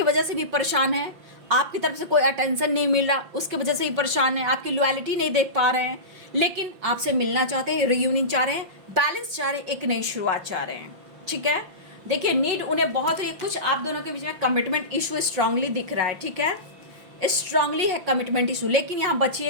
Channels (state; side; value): late; left; 5.8 ms